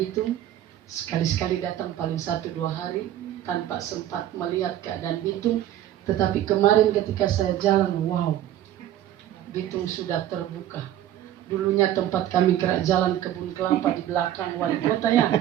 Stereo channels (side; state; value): left; quieter; 12.1 dB